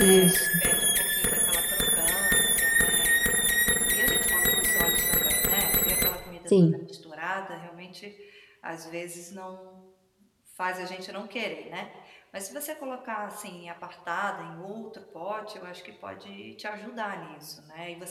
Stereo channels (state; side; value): identical; both; correlation 1.00